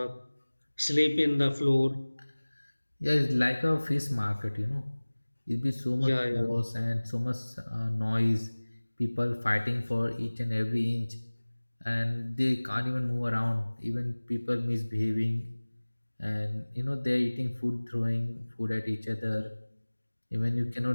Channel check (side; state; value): both; inverted; correlation -1.00